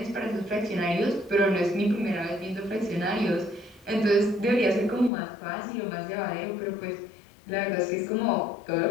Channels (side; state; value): right; drops out; at 5.1 s